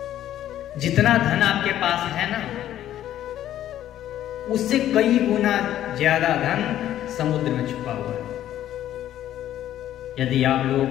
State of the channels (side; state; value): right; quieter; 12.1 dB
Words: जितना धन आपके पास है ना, उससे कई गुना ज्यादा धन समुद्र में छुपा हुआ है। यदि आप लोगों